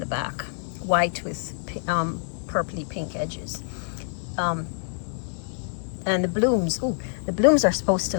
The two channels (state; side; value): silent; right; 61 dB below the other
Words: back. White with purpley pink edges. And the blooms, ooh, the blooms are supposed to